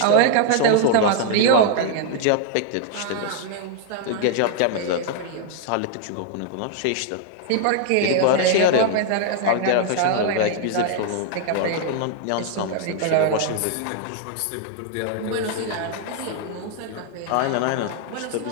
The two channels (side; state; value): both; different; correlation 0.00